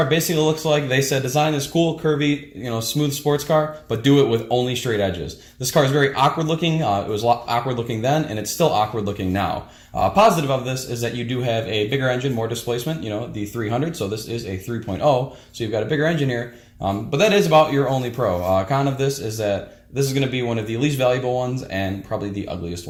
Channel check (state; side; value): identical; both; correlation 1.00